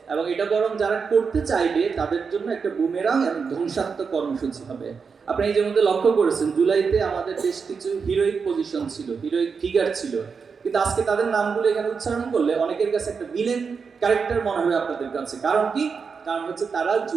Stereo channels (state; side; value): quieter; left; 5.6 dB